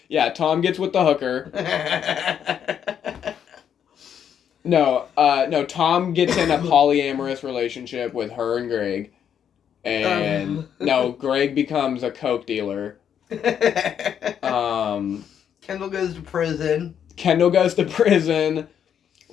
Yeah, Tom gets with the hooker. No, Tom gets in a polyamorous relationship with her and Greg. And no, Greg becomes a coke dealer. Kendall goes to prison.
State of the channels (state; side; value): quieter; right; 8.6 dB